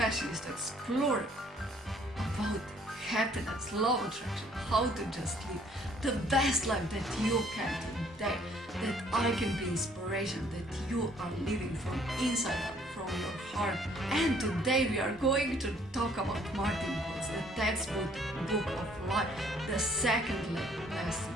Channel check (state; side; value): normal; both; correlation 0.61